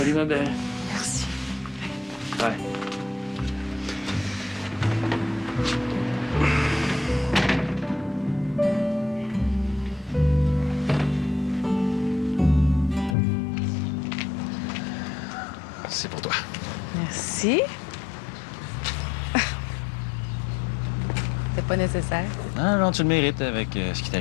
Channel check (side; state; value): right; drops out; at 13.2 s